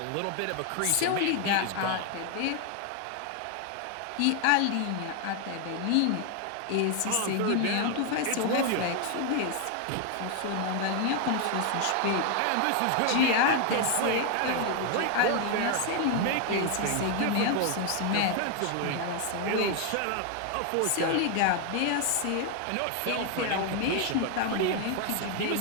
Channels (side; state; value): both; different; correlation 0.00